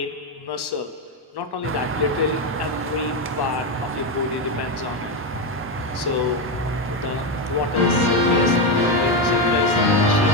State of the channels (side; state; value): both; normal; correlation 0.10